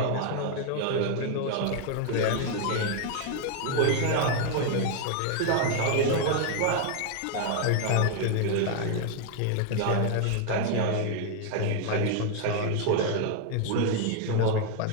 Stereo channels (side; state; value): both; different; correlation 0.00